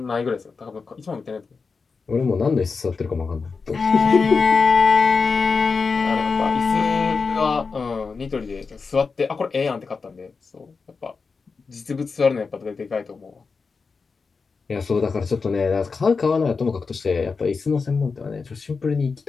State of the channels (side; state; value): right; quieter; 4.8 dB